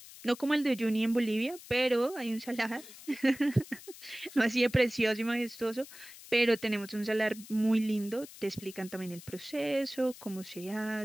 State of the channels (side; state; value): left; noise; hiss, 17 dB below the sound